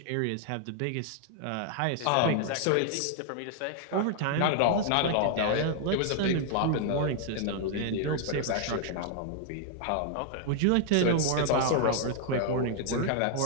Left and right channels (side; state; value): both; different; correlation -0.01